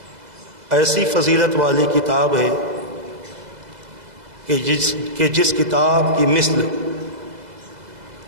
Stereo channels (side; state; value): left; late; 2.0 ms